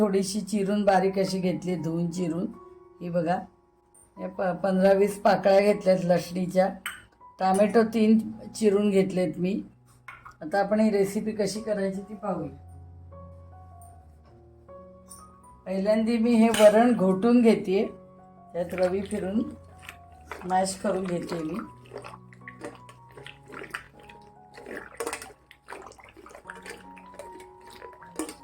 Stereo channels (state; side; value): identical; both; correlation 1.00